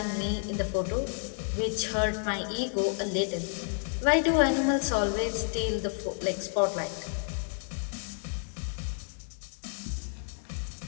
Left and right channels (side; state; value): right; silent; 57 dB below the other